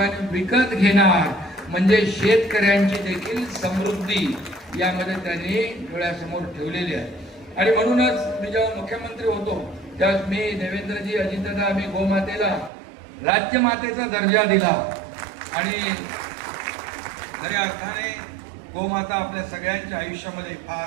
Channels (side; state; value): left; drops out; at 12.7 s